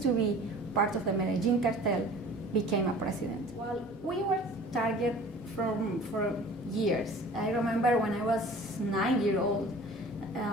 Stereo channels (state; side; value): normal; both; correlation 0.45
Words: to be part of the Medellin cartel became a president. Well, we were target for years. I remember when I was 9 years old,